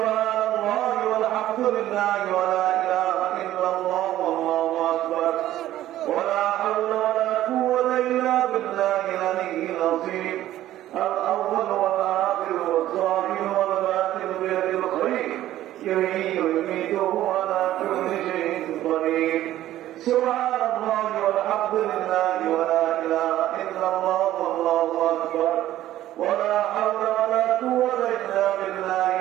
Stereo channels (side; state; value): left; quieter; 13.7 dB